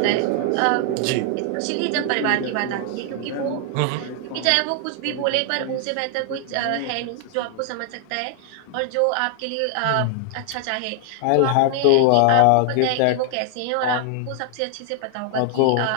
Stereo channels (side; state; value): both; different; correlation 0.00